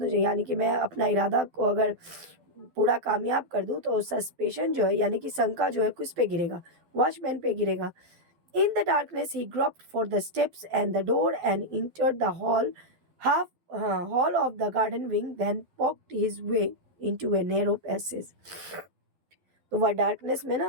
यानी कि मैं अपना इरादा को अगर पूरा कामयाब कर दूँ, तो सस्पेशन जो है यानी कि शंका जो है किस पे गिरेगा, वॉचमैन पे गिरेगा। In the darkness he groped for the steps and the door and entered the hall of the garden wing, then poked his way into a narrow passage. तो वह डार्कनेस में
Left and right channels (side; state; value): left; late; 12 ms